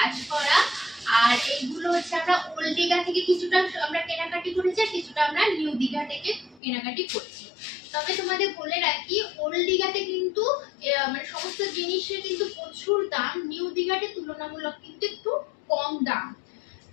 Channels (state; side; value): drops out; right; at 6.6 s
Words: করা, আর এইগুলো হচ্ছে আমরা ওল্ড দীঘা থেকে কিছুটা আমরা কেনাকাটি করেছি, আর কিছুটা আমরা নিউ দীঘা থেকে কেনাকাটি করছি। তবে তোমাদের বলে রাখি, ওল্ড দীঘাতে কিন্তু মানে সমস্ত জিনিসের কিন্তু প্রচুর দাম, নিউ দীঘাতে তুলনামূলক কিন্তু একটু কম দাম।